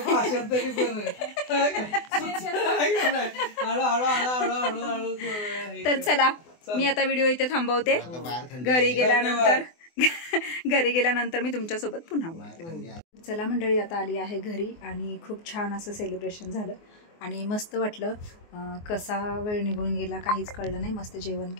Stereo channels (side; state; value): right; late; 24 ms